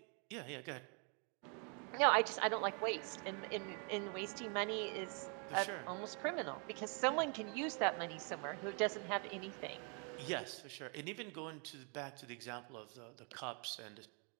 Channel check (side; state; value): left; quieter; 37.4 dB